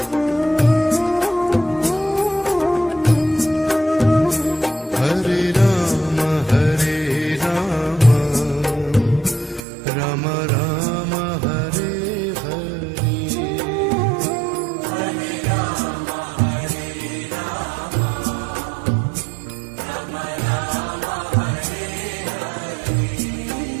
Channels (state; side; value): drops out; left; at 9.6 s